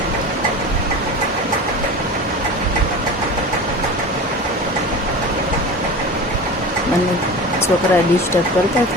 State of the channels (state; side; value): normal; both; correlation 0.32